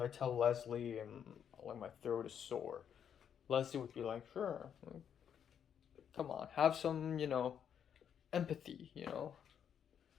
tell Leslie and like my throat is sore, Leslie would be like, sure, come on, have some, empathy,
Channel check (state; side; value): quieter; right; 8.4 dB